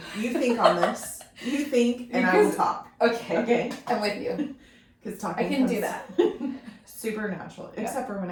you think on this. You think, and I will talk. Okay. Okay. I'm with you. Because talking I can do that. supernatural, Yeah. except for when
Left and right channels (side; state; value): both; identical; correlation 1.00